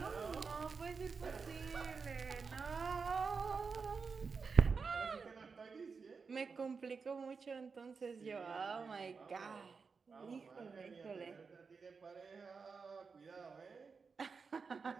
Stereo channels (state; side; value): quieter; left; 5.1 dB